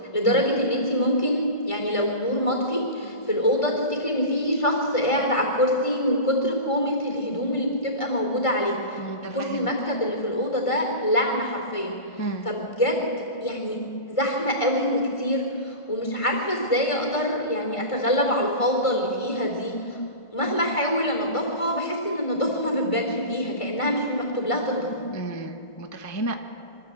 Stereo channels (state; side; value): late; right; 1.5 ms